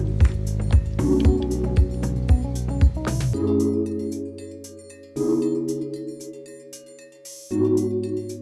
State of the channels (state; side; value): identical; both; correlation 1.00